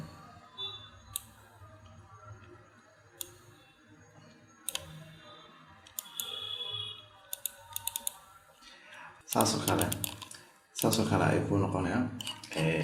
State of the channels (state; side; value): identical; both; correlation 1.00